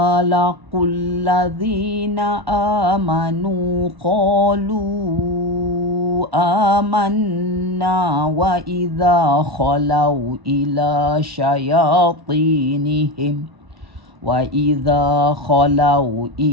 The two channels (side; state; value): left; late; 1.1 ms